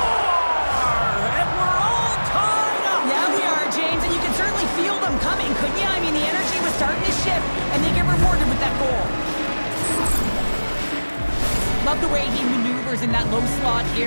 And we're all tied up. Yeah, we are, James, and you can certainly feel them coming, couldn't you? I mean, the energy was starting to shift, and they get rewarded with that goal. Love the way he maneuvers in that low slot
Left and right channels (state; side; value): inverted; both; correlation -1.00